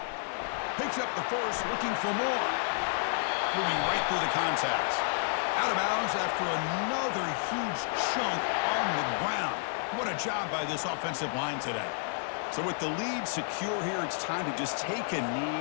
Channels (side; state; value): right; silent; 57 dB below the other